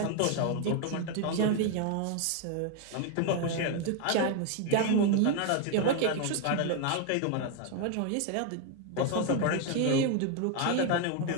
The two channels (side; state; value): both; different; correlation 0.01